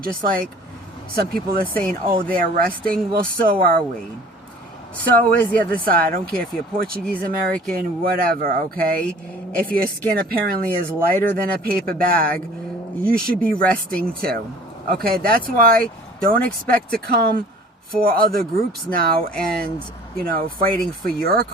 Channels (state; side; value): normal; both; correlation 0.48